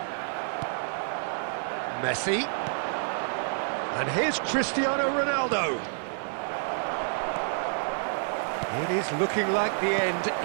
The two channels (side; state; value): left; silent; digital silence